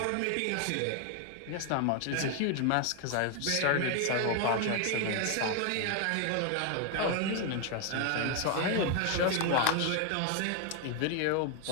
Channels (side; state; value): both; different; correlation 0.01